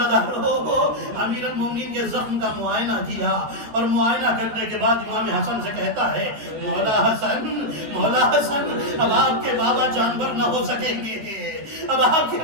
امیر المومنین کے زخم کا معائنہ کیا اور معائنہ کرنے کے بعد امام حسن سے کہتا ہے، مولا حسن، اب آپ کے بابا جانور نہ ہو سکیں گے، اب آپ کے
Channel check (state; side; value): late; left; 13 ms